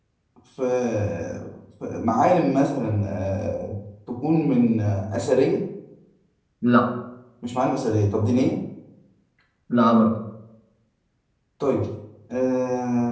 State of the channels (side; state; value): both; identical; correlation 1.00